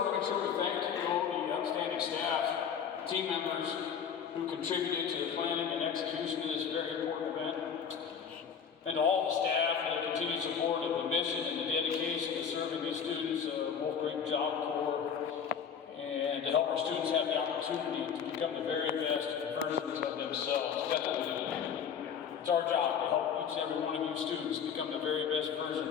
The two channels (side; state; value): right; quieter; 7.3 dB